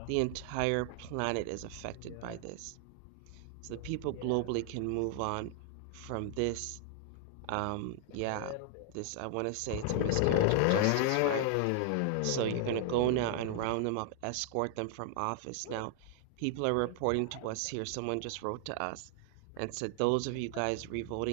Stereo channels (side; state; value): both; different; correlation 0.00